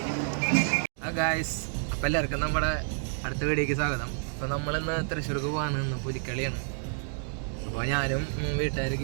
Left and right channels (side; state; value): left; silent; 58 dB below the other